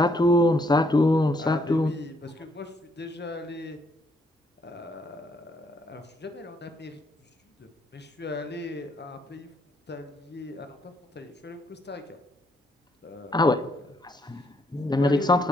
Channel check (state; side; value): normal; both; correlation 0.72